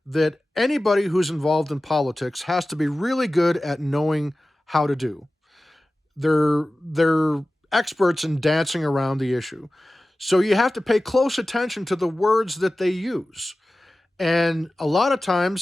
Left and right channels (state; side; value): normal; both; correlation 0.95